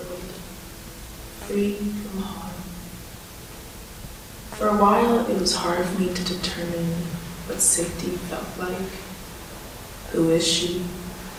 free from harm. For a while, it was hard for me to determine what safety felt like. Who is she?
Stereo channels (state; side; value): identical; both; correlation 1.00